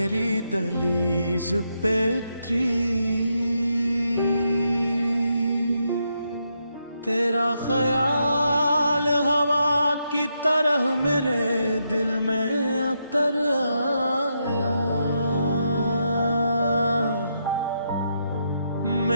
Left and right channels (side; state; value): both; inverted; correlation -0.81